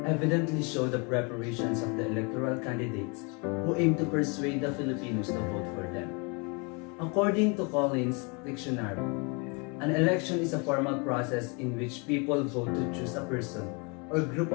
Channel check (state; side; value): quieter; right; 32.5 dB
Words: evidently show the preparations of the electoral candidates who aim to persuade the Filipinos to vote for them. According to Collins' dictionary, an election is a formal process in which people vote to choose a person or